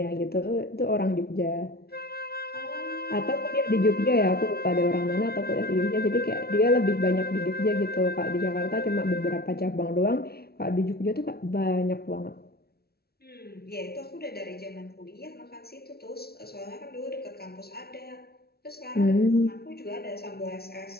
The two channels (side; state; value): right; late; 0.45 ms